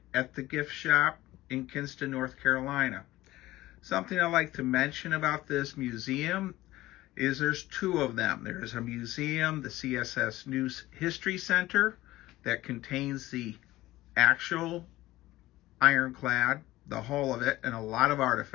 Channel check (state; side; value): quieter; right; 16.9 dB